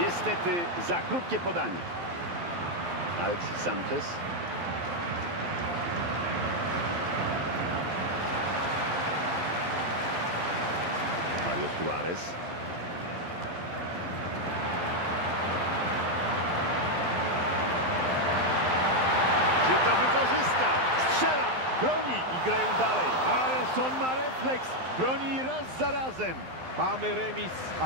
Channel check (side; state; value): left; late; 12 ms